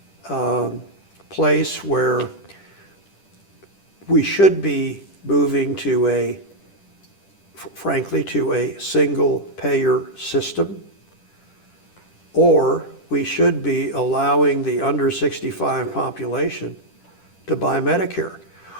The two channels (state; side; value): late; right; 10 ms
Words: place where we should be moving to frankly, to a single payer system, or we should be allowing the under 65 population to buy Medicare.